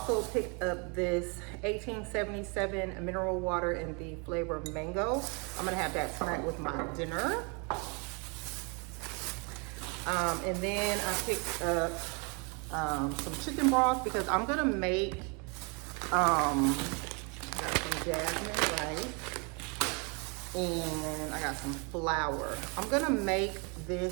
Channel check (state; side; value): quieter; left; 33.4 dB